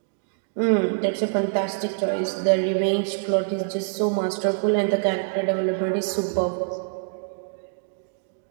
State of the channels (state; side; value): silent; left; digital silence